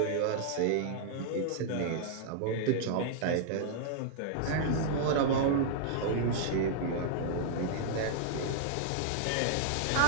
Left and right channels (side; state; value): both; different; correlation -0.01